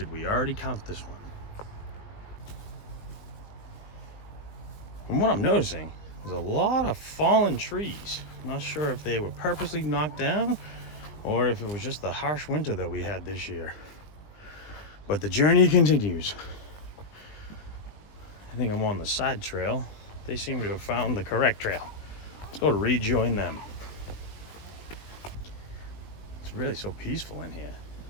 we already count this one? From what I'm noticing, there's a lot of fallen trees. I'm not sure if they were purposely knocked down or if it was just the harsh winter that we had this year. But the journey continues. I think I'm on the side trail. They seem to have found the correct trail. Let's go rejoin them. It's really so peaceful in here.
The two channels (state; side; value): late; right; 20 ms